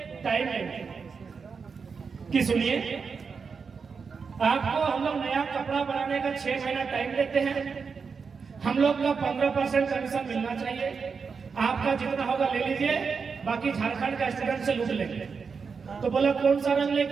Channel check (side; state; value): left; quieter; 5.5 dB